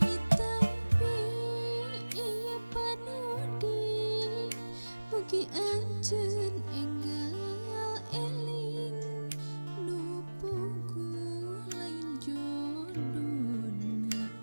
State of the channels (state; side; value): inverted; both; correlation -1.00